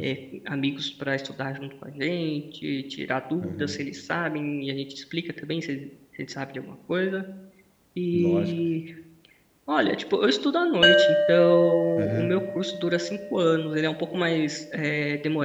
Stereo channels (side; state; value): both; identical; correlation 1.00